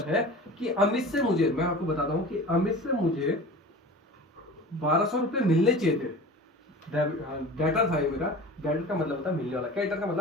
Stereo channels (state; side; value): normal; both; correlation 0.37